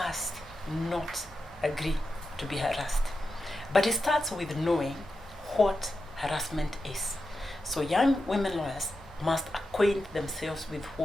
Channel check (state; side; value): normal; both; correlation 0.89